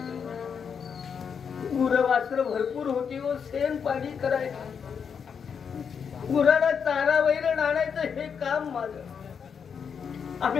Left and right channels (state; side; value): quieter; right; 6.8 dB